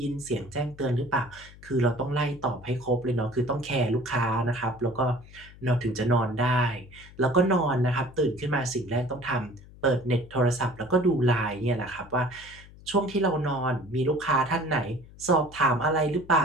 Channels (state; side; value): noise; left; hum, 20 dB below the sound